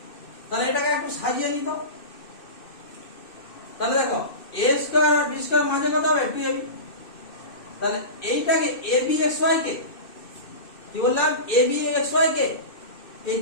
তাহলে এটাকে একটু সাজিয়ে নিত। তাহলে দেখো এ স্কয়ার আর বি স্কয়ার মাঝে কত হবে 2ab। তাহলে এইটাকে ab xy কে কি বললাম, ab xy কে এই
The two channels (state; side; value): late; right; 2.6 ms